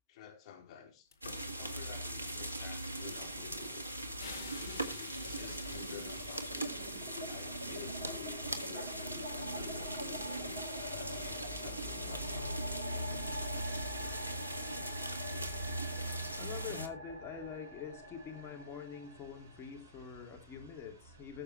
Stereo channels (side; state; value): both; inverted; correlation -0.64